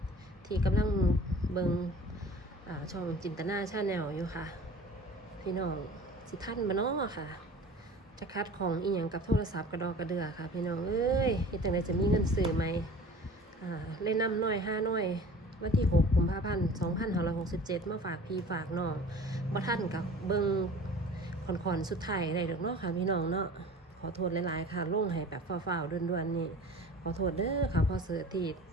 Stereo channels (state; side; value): normal; both; correlation 0.43